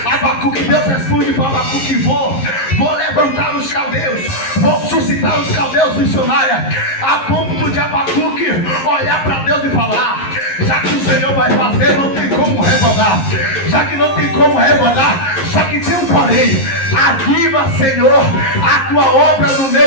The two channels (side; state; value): right; late; 11 ms